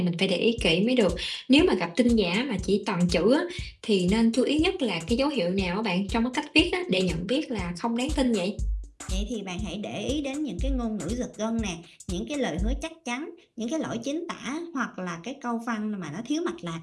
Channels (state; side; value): identical; both; correlation 1.00